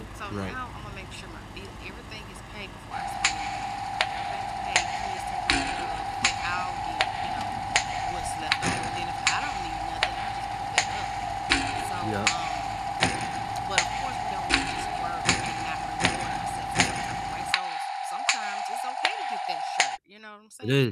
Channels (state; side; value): identical; both; correlation 1.00